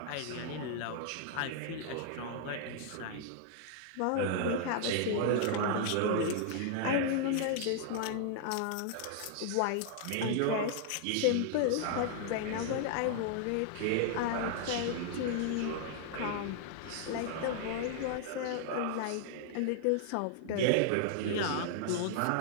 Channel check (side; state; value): both; different; correlation -0.01